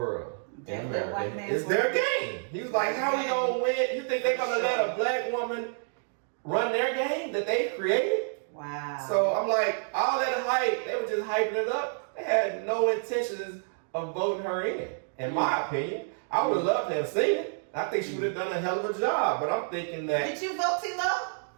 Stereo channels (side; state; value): left; silent; digital silence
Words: In America. White man's it's world. their game. He was like, how we gonna win? You think they're gonna let a black woman run their game that they created? Wow. So I'm like, all that hype, they were just hyping it up. They had no intentions of voting her in my opinion. I would love to have seen it. I think she would have done a hell of a job, but I'm thinking that. Did you vote, T-Lo?